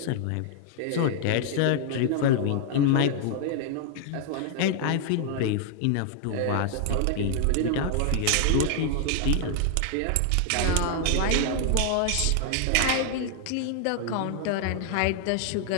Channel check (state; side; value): different; both; correlation 0.00